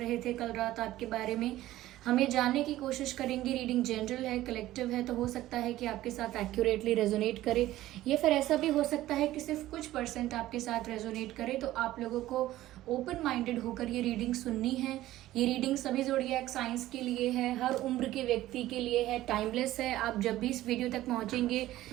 थे कल रात आपके बारे में। हमें जानने की कोशिश करेंगे। रीडिंग जनरल है, कलेक्टिव है, तो हो सकता है कि आपके साथ एक्यूरेटली रेजोनेट करे, या फिर ऐसा भी हो सकता है कि सिर्फ कुछ परसेंट आपके साथ रेजोनेट करे। तो आप लोगों को ओपन माइंडेड होकर ये रीडिंग सुननी है। ये रीडिंग सभी ज़ोडिएक साइंस के लिए है, हर उम्र के व्यक्ति के लिए है, टाइमलेस है। आप जब भी इस वीडियो तक पहुंचेंगे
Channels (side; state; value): left; quieter; 15.2 dB